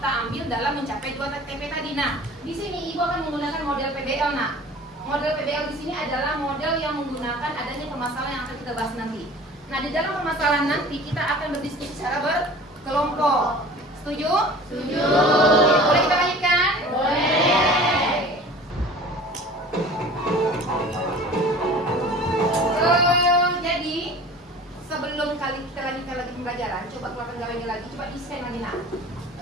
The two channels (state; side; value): normal; both; correlation 0.43